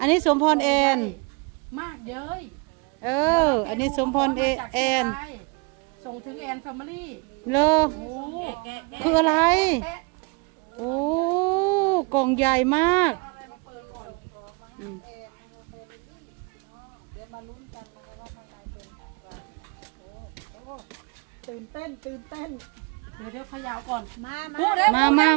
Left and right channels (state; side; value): quieter; left; 31.2 dB